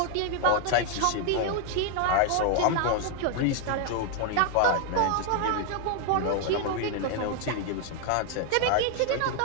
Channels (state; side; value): different; both; correlation 0.00